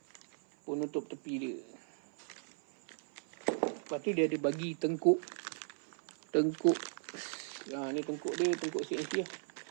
Penutup tepi dia. Lepas tu dia ada bagi tengkuk. Ni tengkuk dia, tengkuk CNC lah.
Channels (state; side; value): silent; left; 53 dB below the other